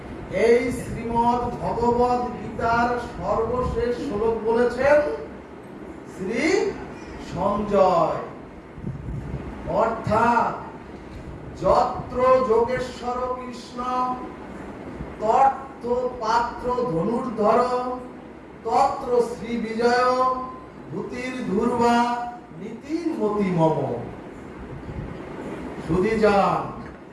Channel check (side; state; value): both; identical; correlation 1.00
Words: এই শ্রীমদ্ ভগবদ গীতার সর্বশেষ শ্লোক বলেছেন শ্রী সঞ্জয়, অর্থাৎ যত্র যোগেশ্বর কৃষ্ণ তত্র পাত্র ধনুর্ধর তত্র শ্রী বিজয় ভূতির ধূর্বা নীতির মতি মম। সুধীজন,